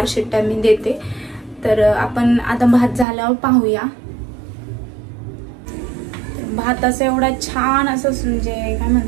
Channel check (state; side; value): drops out; left; at 3.1 s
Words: शिट्ट्या मी देते. तर आपण आता भात झाल्यावर पाहूया. भात असं एवढा छान असं म्हणजे काय